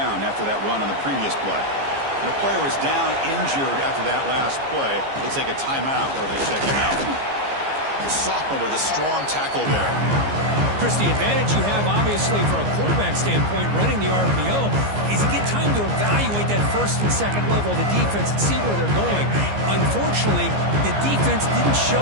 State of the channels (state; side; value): late; left; 15 ms